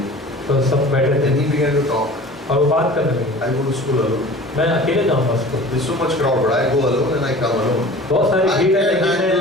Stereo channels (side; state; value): both; normal; correlation 0.42